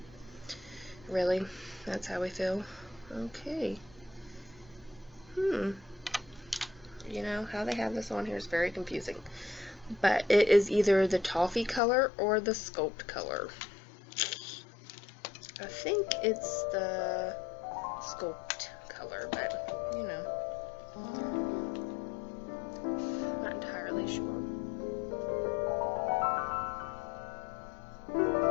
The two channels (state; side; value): drops out; right; at 11.8 s